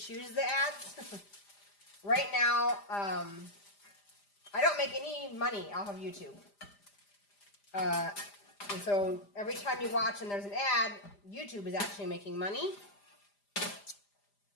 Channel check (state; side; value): late; right; 5.0 ms